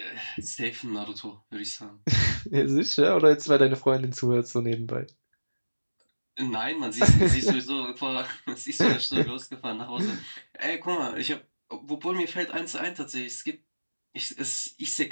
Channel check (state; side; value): inverted; both; correlation -1.00